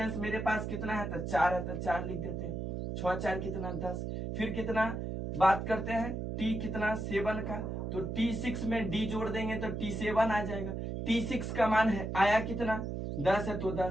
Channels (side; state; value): right; noise; hum, 4 dB below the sound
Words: मेरे पास कितना है तो 4 है, तो 4 लिख देते हैं। 6 4 कितना 10। फिर कितना बात करते हैं T कितना 7 का, तो T6 में D जोड़ देंगे तो T7 आ जाएगा। T6 का मान है आया कितना 10 है, तो